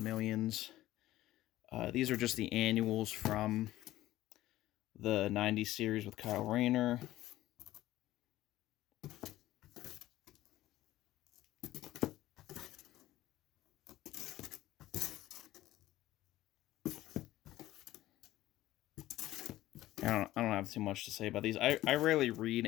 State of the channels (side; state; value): right; quieter; 15.4 dB